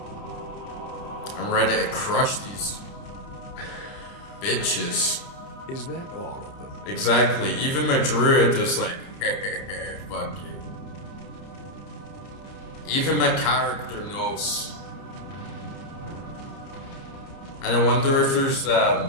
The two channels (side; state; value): right; late; 30 ms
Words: I'm ready to crush these bitches. Is that all of them? Exactly, even my Druid is like, fuck you. Even my character knows. And I wonder if there's